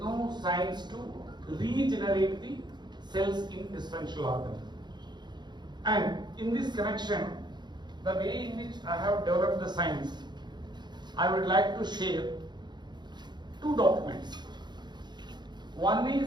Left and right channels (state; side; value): late; left; 0.21 ms